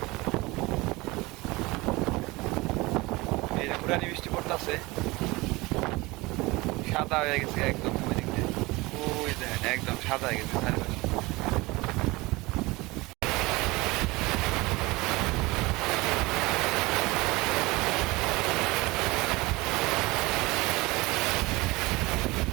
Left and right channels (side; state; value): left; quieter; 22.4 dB